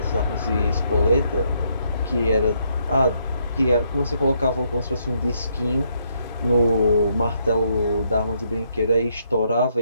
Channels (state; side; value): inverted; both; correlation -0.74